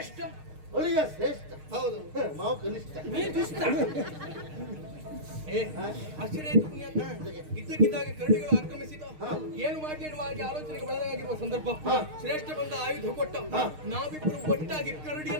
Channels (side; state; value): left; late; 6.5 ms